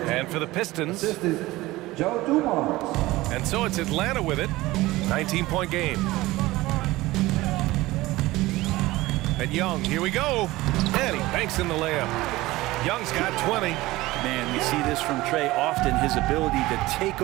for the Pistons, Joe Dumars. And so it's Atlanta with it. 19-point game. And Young, here we go. And he banks in the layup. Young's got 20. Man, we see this from Trey often, his ability to take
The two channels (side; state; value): left; quieter; 18.7 dB